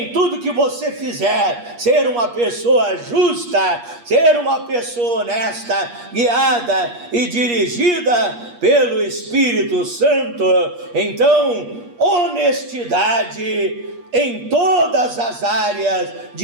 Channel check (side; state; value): left; late; 8.4 ms